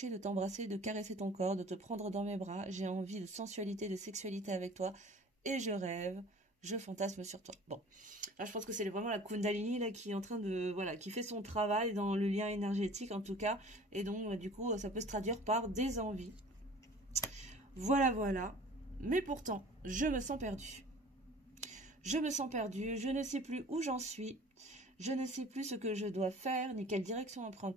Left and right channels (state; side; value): normal; both; correlation 0.46